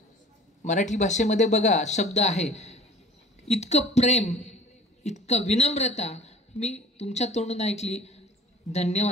मराठी भाषेमध्ये बघा शब्द आहे, इतकं प्रेम, इतकं विनम्रता मी तुमच्या तोंडून ऐकली.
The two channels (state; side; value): normal; both; correlation 0.47